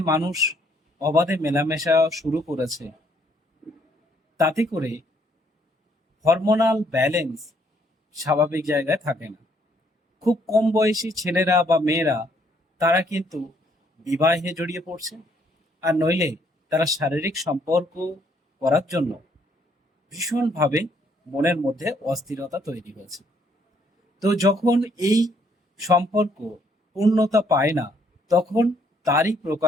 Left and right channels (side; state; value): both; normal; correlation 0.68